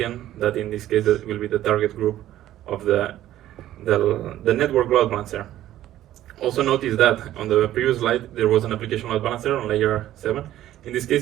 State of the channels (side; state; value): left; quieter; 13.3 dB